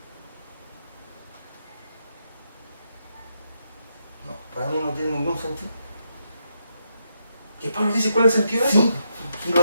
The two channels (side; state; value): both; inverted; correlation -0.82